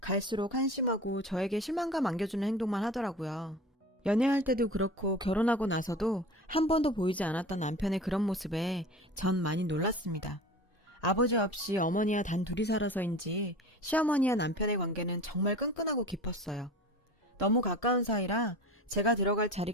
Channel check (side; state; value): both; normal; correlation 0.37